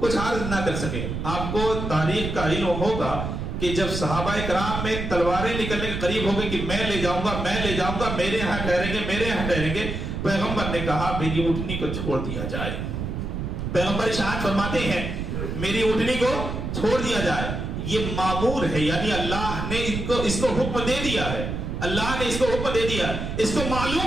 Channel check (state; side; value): noise; right; rumble, 4 dB below the sound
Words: عرض نہ کر سکے. آپ کو تاریخ کا علم ہوگا کہ جب صحابہ کرام میں تلواریں نکلنے کے قریب ہو گئی کہ میں لے جاؤں گا، میں لے جاؤں گا، میرے یہاں ٹھہریں گے، میرے یہاں ٹھہریں گے، پیغمبر نے کہا میری اونٹنی کو چھوڑ دیا جائے. پیغمبر ارشاد فرماتے ہیں میری اونٹنی کو چھوڑ دیا جائے. یہ معمور ہے، یعنی اللہ نے اس کو حکم دے دیا ہے، اللہ نے اس کو حکم دے دیا. اس کو